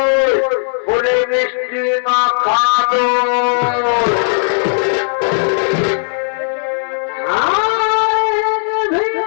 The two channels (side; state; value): right; silent; digital silence